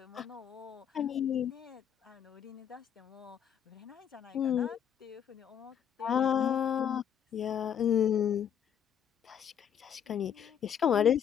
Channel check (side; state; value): right; quieter; 8.8 dB